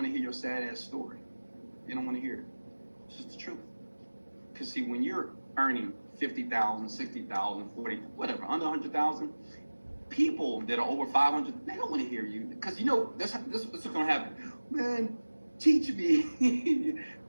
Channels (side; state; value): both; inverted; correlation -1.00